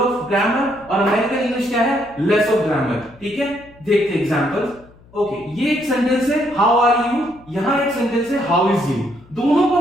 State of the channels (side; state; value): left; noise; hum, 26 dB below the sound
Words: ग्रामर, और अमेरिकन इंग्लिश क्या है, लेस ऑफ ग्रामर, ठीक है। देखते हैं एग्जांपल। ओके, ये एक सेंटेंस है हाउ आर यू, यहां एक सेंटेंस है हाउ इज यू, दोनों का